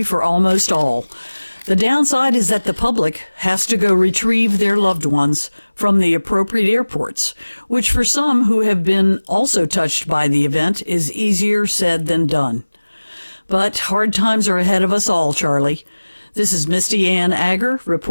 for almost all. The downside is that the public has to go retrieve their loved ones from the appropriate airports, which for some who have been also touched by the event is easier said than done. But hard times are ahead of us all, Charlie. This is Misty Ann Agar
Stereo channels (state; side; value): inverted; both; correlation -1.00